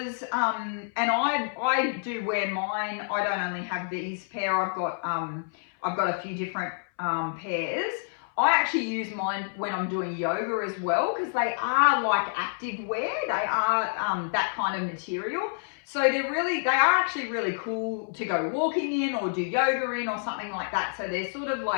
and I do wear mine. I don't only have these pair. I've got a few different pairs. I actually use mine when I'm doing yoga as well, because they are like active wear. They are that kind of material. So they are actually really cool to go walking in or do yoga in or something like that. So they're sort of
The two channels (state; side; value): silent; right; 59 dB below the other